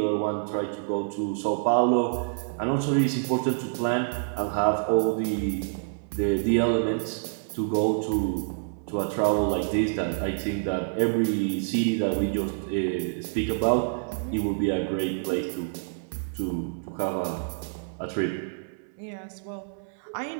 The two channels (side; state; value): left; silent; 59 dB below the other